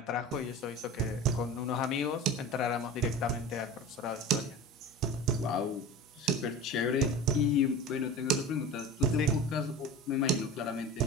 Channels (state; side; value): normal; both; correlation 0.34